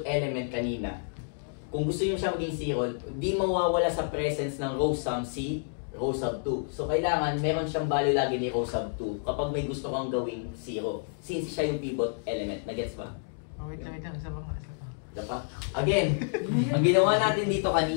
element kanina, kung gusto nyo siya maging 0, di mawawala sa presence ng row sum si row sub 2. So, kailangan meron siyang value lagi ni row sub 2 kapag may gusto kang gawing 0. Since siya yung pivot element. Nagets ba? Wait lang. Isa pa. Diba? Again, ang ginawa natin dito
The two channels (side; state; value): right; silent; digital silence